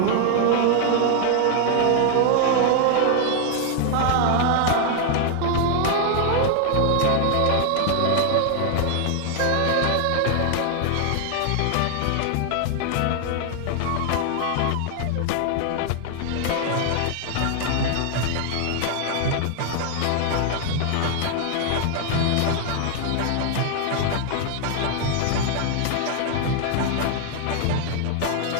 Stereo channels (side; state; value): both; different; correlation 0.00